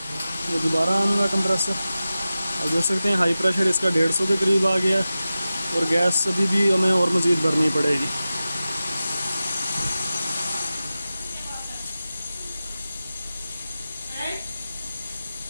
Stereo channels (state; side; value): inverted; both; correlation -0.94